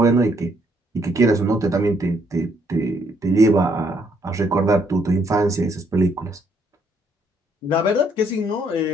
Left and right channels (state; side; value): normal; both; correlation 0.69